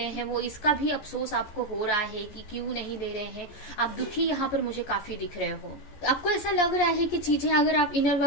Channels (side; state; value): right; late; 14 ms